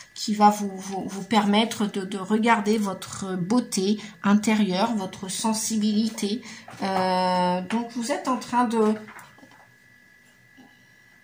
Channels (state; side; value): identical; both; correlation 1.00